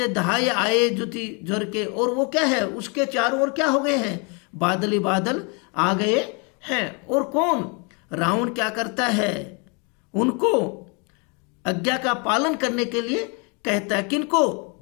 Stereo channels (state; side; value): quieter; right; 33.5 dB